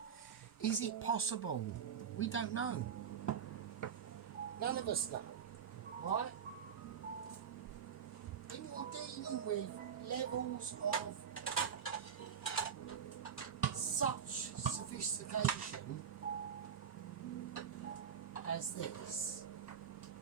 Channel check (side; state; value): left; quieter; 7.6 dB